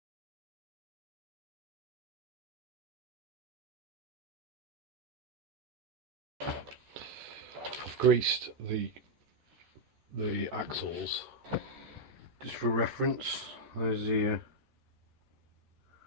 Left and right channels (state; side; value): late; left; 14 ms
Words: I've greased the axles just for reference. There's the